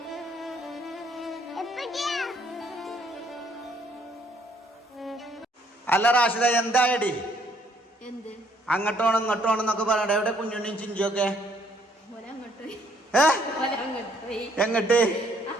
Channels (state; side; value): normal; both; correlation 0.66